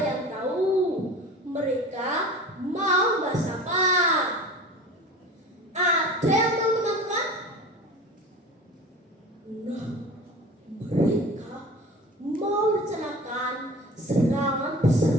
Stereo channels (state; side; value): normal; both; correlation 0.38